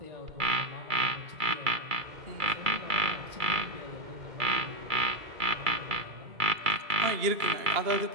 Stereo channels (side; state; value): left; late; 2.3 ms